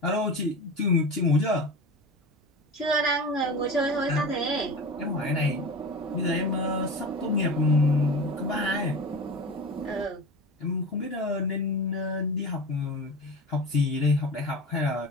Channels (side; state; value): both; normal; correlation 0.31